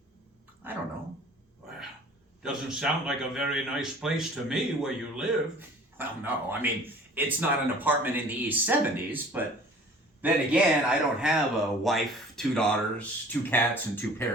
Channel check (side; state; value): both; normal; correlation 0.48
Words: I don't know. Well, doesn't sound like a very nice place to me where you live. Well, no. I mean, it's not an apartment in the East 70s, but then again, I don't have a wife, 2 daughters, 2 cats, and 2